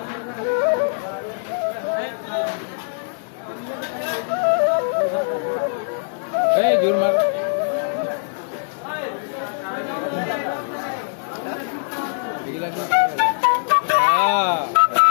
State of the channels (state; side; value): silent; right; digital silence